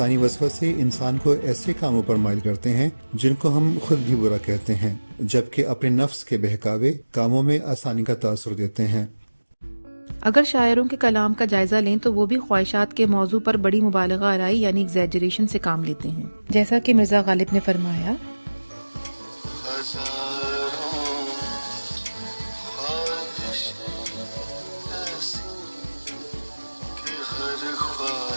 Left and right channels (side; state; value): both; inverted; correlation -1.00